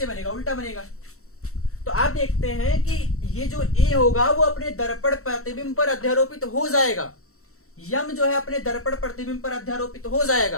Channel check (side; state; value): right; late; 0.64 ms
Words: बनेगा? उल्टा बनेगा। तो आप देखते हैं कि ये जो A होगा वो अपने दर्पण प्रतिबिंब पर अध्यारोपित हो जाएगा। यम जो है अपने दर्पण प्रतिबिंब पर अध्यारोपित हो